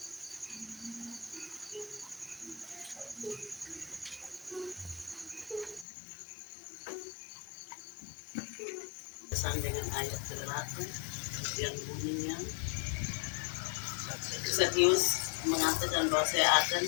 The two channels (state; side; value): drops out; right; at 5.9 s